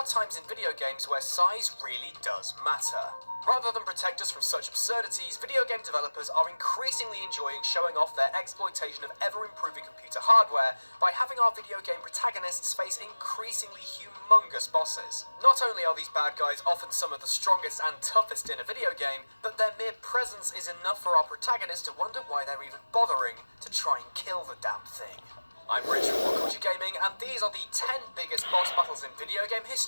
times in video games where size really does matter. Rather than protect us from such absurdities, video game developers are increasingly enjoying showing off their exploitation of ever-improving computer hardware by having our video game protagonists face increasingly humongous bosses. Not only are these bad guys often some of the strongest and toughest in a video game, but their mere presence is enough for our protagonists to wonder why they're even bothering to try and kill the damn thing. I'm Rich from What Culture Gaming, and these are the 10 biggest boss battles in video game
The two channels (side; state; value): both; inverted; correlation -1.00